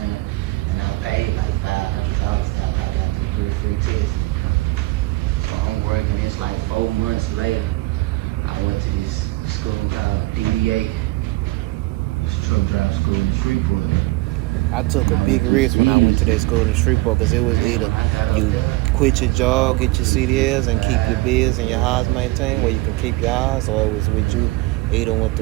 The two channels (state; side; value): quieter; left; 21.0 dB